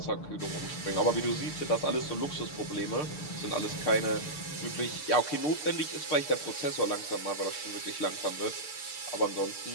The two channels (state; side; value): late; right; 6.7 ms